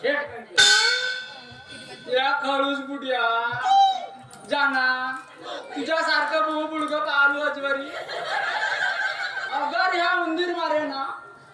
शेठ. या खळूस बुड्या जाना तुझ्यासारखं बहु बुडगं पाहलो अजवरी. अगर ह्या उंदीर मारे ना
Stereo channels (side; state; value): both; identical; correlation 1.00